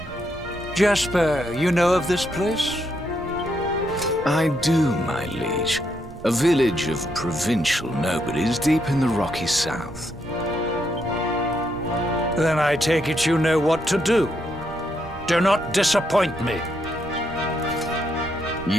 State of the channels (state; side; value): noise; right; rumble, 16 dB below the sound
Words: Jasper, you know of this place? I do, my liege. A village of provincial nobodies deep in the rocky south. Then I take it you know what to do. Do not disappoint me.